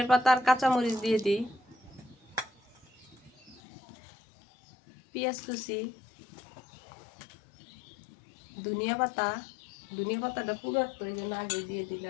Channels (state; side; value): drops out; right; at 3.6 s